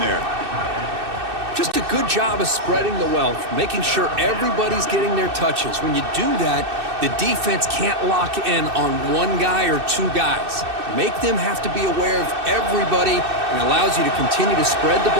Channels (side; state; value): left; late; 2.6 ms